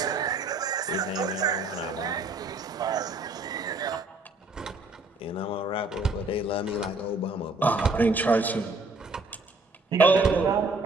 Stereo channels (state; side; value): quieter; left; 3.1 dB